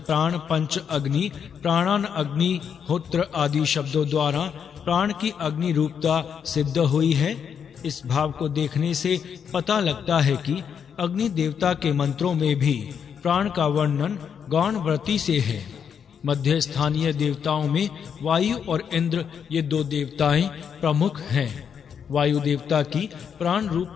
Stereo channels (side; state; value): right; quieter; 7.5 dB